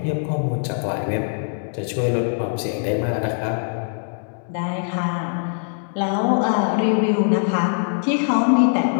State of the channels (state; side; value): silent; right; digital silence